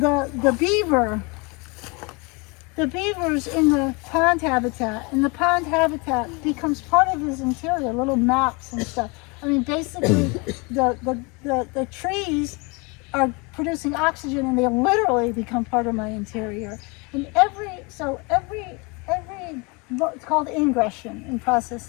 beaver. The beaver's in the pond habitat, and the pond habitat becomes part of his interior, little maps and stuff. I mean, basically, the trees are producing oxygen, and they literally become part of my interior. And every it's called ingression in process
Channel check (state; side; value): quieter; right; 29.0 dB